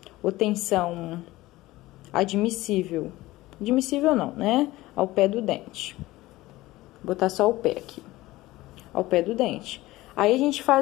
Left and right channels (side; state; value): right; quieter; 18.1 dB